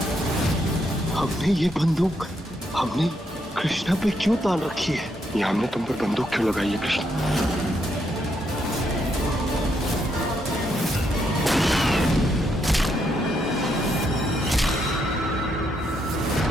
हमने ये बंदूक हमने कृष्णा पे क्यों तान रखी है? ये हमने तुम पर बंदूक क्यों लगाई है कृष्णा?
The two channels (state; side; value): normal; both; correlation 0.77